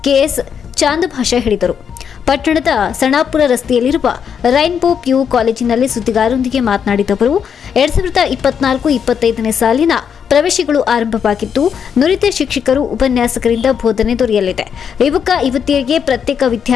ಕೆಎಸ್ ಚಾಂದಭಾಷಾ ಹೇಳಿದರು. ಪಟ್ಟಣದ ಸಣಾಪುರ ರಸ್ತೆಯಲ್ಲಿರುವ ರೈನ್ಬೋ ಪಿಯು ಕಾಲೇಜಿನಲ್ಲಿ ಸುದ್ದಿಗಾರರೊಂದಿಗೆ ಮಾತನಾಡಿದ ಅವರು 2024-25ನೇ ಸಾಲಿನ ಪ್ರವೇಶಗಳು ಆರಂಭವಾಗಿದ್ದು ನುರಿತ ಶಿಕ್ಷಕರು ಉಪನ್ಯಾಸಕರಿಂದ ಬೋಧನೆ ದೊರೆಯಲಿದೆ. ಯುವಕ ಯುವತಿಯರಿಗೆ ಪ್ರತ್ಯೇಕ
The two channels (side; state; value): right; quieter; 7.5 dB